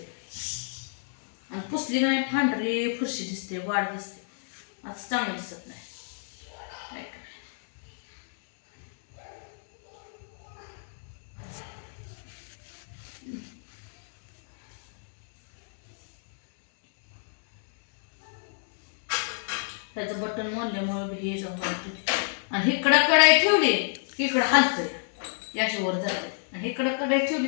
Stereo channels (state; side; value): silent; right; 59 dB below the other